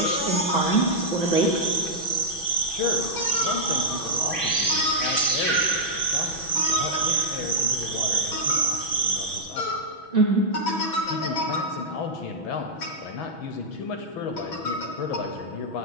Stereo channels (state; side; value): late; right; 6.1 ms